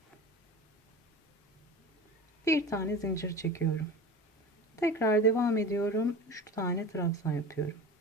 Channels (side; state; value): both; normal; correlation 0.33